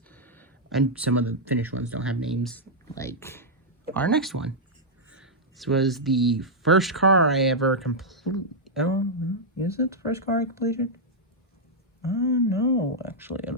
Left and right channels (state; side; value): normal; both; correlation -0.05